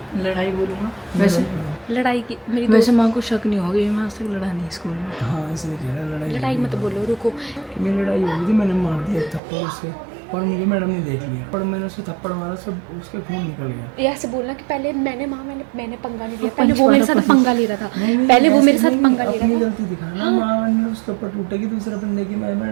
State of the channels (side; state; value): left; drops out; at 9.4 s